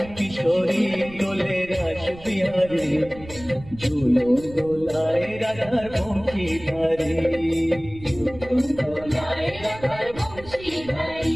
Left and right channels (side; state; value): right; noise; rumble, 17 dB below the sound